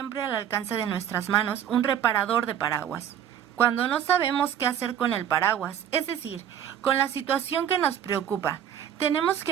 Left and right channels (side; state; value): left; quieter; 9.8 dB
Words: al alcance de nuestras manos un reparador de paraguas. Cuando no sabemos qué hacer con el paraguas, es decir, con la situación que nos preocupa, tenemos